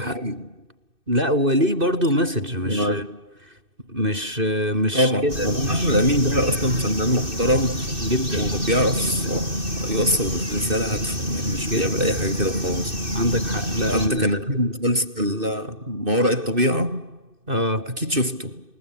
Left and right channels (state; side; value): late; left; 2.6 ms